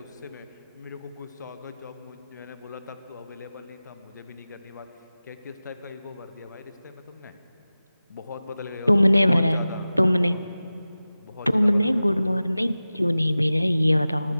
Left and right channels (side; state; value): both; inverted; correlation -0.96